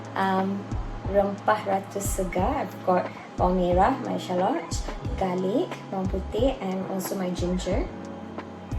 rempah ratu segar. I've got bawang merah, my shallots, garlic, bawang putih, and also my ginger.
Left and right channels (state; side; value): identical; both; correlation 1.00